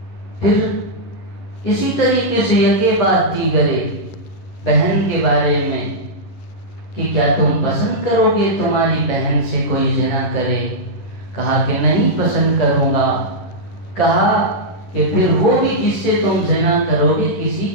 پھر اسی طریقے سے یکے بعد دیگرے بہن کے بارے میں کہ کیا تم پسند کرو گے تمہاری بہن سے کوئی زنا کرے؟ کہا کہ نہیں پسند کروں گا۔ کہا کہ پھر وہ بھی جس سے تم زنا کرو گے کسی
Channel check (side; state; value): right; late; 11 ms